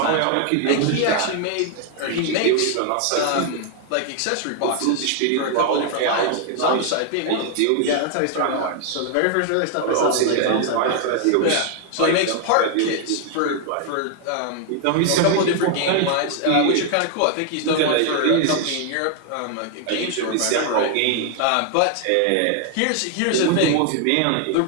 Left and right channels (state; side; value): different; both; correlation 0.00